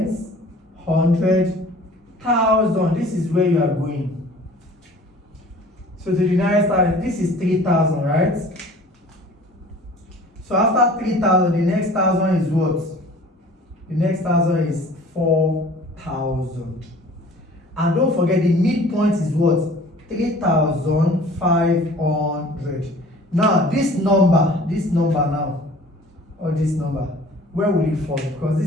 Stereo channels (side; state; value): both; normal; correlation 0.48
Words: 100, 1,000. This is where you are going. So to the nearest thousand, this is 3,000, right? So after 3,000, the next thousand is what? The next thousand is 4,000. And don't forget, the midpoint is what? 3,500. Now this number now, or this number, where will it fall? Because